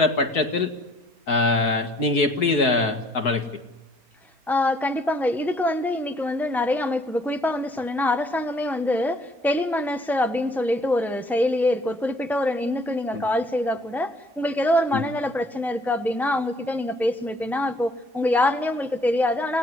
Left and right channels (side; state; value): both; normal; correlation 0.61